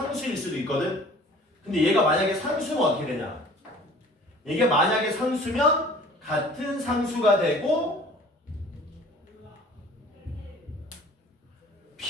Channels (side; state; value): both; normal; correlation 0.48